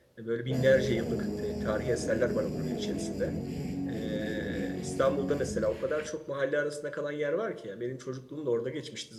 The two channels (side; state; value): both; identical; correlation 1.00